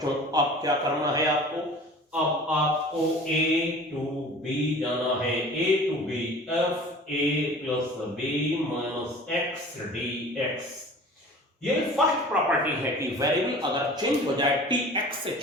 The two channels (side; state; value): both; normal; correlation 0.43